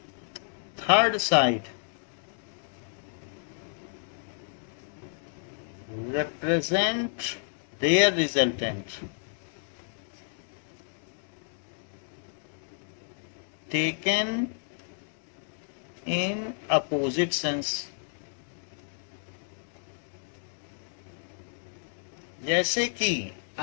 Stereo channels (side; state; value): right; silent; digital silence